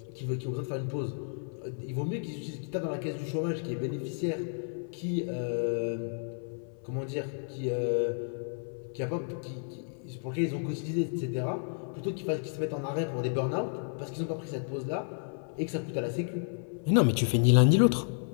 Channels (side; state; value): right; silent; 57 dB below the other